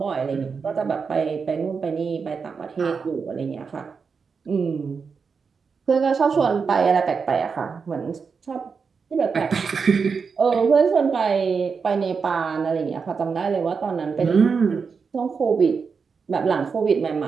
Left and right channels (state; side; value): quieter; left; 5.5 dB